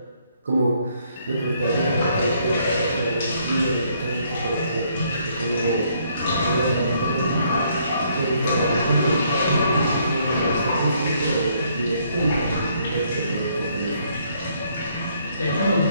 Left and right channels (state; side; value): inverted; both; correlation -0.68